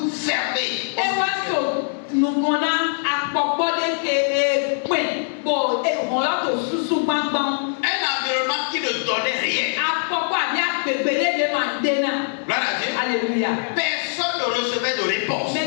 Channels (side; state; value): right; silent; digital silence